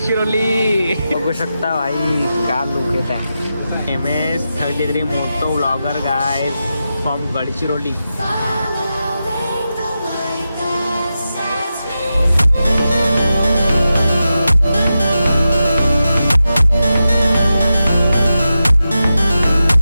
बघू शकता भाई का लुक येत आहे. MS33 motor vlogger guys from Gadchiroli.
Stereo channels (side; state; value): both; inverted; correlation -0.90